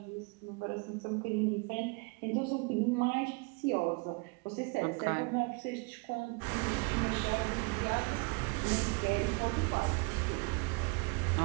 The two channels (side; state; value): left; quieter; 29.8 dB